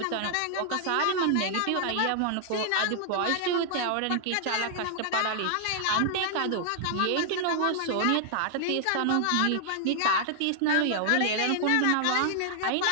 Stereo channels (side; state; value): both; different; correlation 0.00